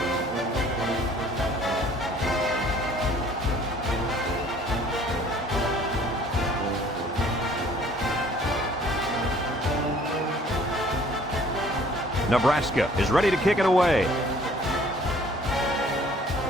Nebraska is ready to kick it away.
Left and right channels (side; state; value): both; normal; correlation 0.55